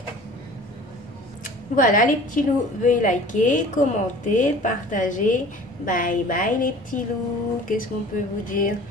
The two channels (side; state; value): both; normal; correlation 0.45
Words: Voilà les petits loups. Veuillez liker, commenter, partager. Bye bye les petits loups. Qu'est-ce qu'on peut vous dire?